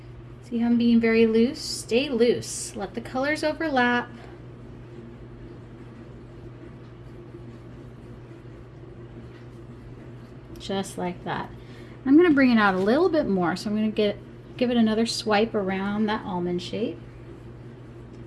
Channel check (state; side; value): identical; both; correlation 1.00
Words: See how I'm being very loose? Stay loose. Let the colors overlap. Just like that. I'm going to bring it out a little bit more, so I'm going to give it another swipe around that almond shape.